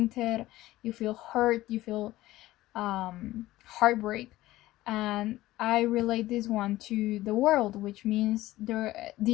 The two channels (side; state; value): right; quieter; 16.6 dB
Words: you feel hurt, you feel heartbreak. And I relate this one to the World, which means